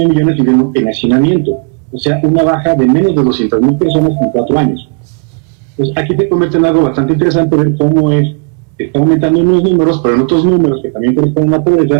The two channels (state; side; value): quieter; left; 36.6 dB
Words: millones viviendo en hacinamiento. O sea, una baja de menos de 200.000 personas en 4 años. Pues aquí se convierte en algo bastante interesante ver cómo está aumentando en unos números, pero en otros números que también corresponden a la